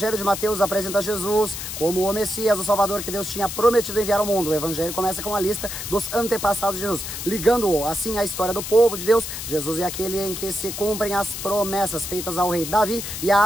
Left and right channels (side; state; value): left; noise; hiss, 7 dB below the sound